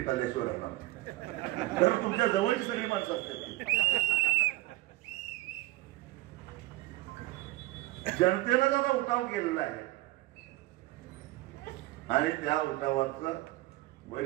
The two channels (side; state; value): left; quieter; 18.3 dB